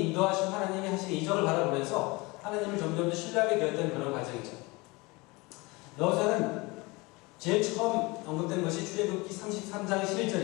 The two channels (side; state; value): right; quieter; 24.6 dB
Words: 인도하신, 하나님이 하신 이적을 바라보면서 하나님을 점점 더 신뢰하게 되었던 그런 과정이죠. 여호수아는 제일 처음 언급된 것이 출애굽기 33장